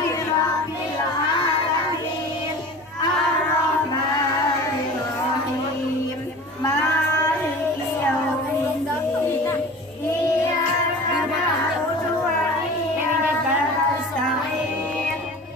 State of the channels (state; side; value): normal; both; correlation 0.38